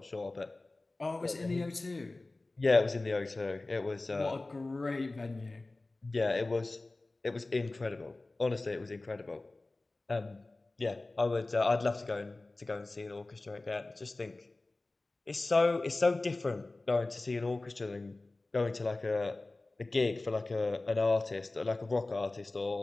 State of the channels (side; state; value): right; quieter; 3.0 dB